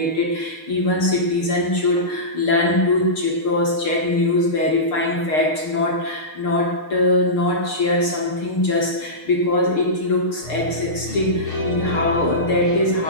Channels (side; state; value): right; late; 6.6 ms